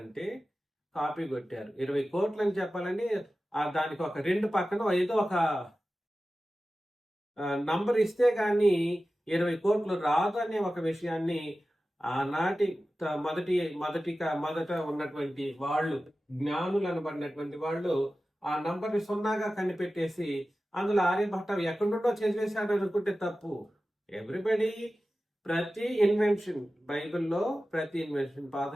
కాపీ కొట్టారు. 20 కోట్లు అని చెప్పాలని దానికి ఒక 2 పక్కన ఏదో ఒక నంబర్ ఇస్తే గాని 20 కోట్లు రాదు అనే ఒక విషయాన్ని ఆనాటి మొదట ఉన్నటువంటి వాళ్ళు, జ్ఞానులు అనబడినటువంటి వాళ్ళు ఆ నంబర్ని సున్నాగా కనిపెట్టేసి అందులో ఆర్యభట్ట ఎక్కడి నుండో చేసేసాడు అనుకుంటే తప్పు. ఎవ్రీబడి, ప్రతి ఇన్వెన్షన్ బైబిల్లో, ప్రతి ఇన్వెన్షన్ పాత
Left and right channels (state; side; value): normal; both; correlation 0.95